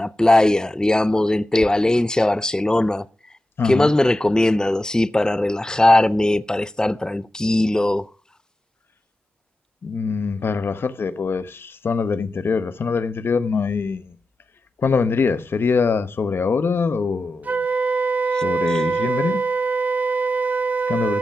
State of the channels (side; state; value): both; normal; correlation 0.92